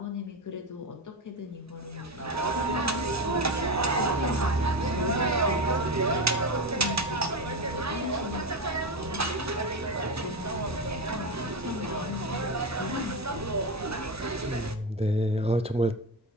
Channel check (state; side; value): normal; both; correlation 0.16